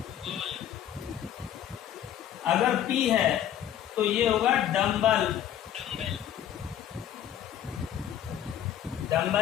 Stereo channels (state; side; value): quieter; right; 10.6 dB